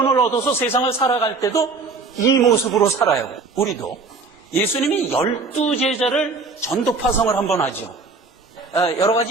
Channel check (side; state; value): left; quieter; 4.1 dB